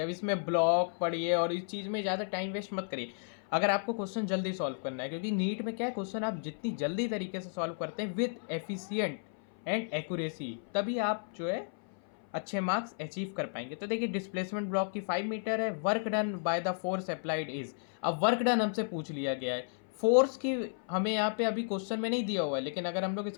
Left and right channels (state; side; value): silent; right; 56 dB below the other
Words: अब इसमें ब्लॉक पढ़िए और इस चीज़ में ज़्यादा टाइम वेस्ट मत करिए अगर आपको क्वेश्चन जल्दी सॉल्व करना है, क्योंकि नीट में क्या है, क्वेश्चन आप जितनी जल्दी तरीके से सॉल्व करते हैं विद एफिशिएंट एंड एक्यूरेसी, तभी आप जो है अच्छे मार्क्स अचीव कर पाएंगे। तो देखिए डिस्प्लेसमेंट ब्लॉक की 5 मीटर है। Work done by the force applied is, अब वर्क डन हमसे पूछ लिया गया है। फोर्स की हमें यहाँ पे अभी क्वेश्चन में नहीं दिया हुआ है, लेकिन अगर हम लोग